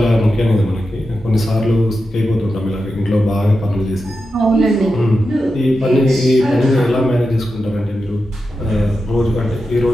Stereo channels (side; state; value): both; normal; correlation 0.90